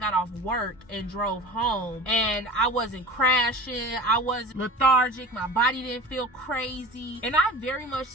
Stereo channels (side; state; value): both; normal; correlation 0.36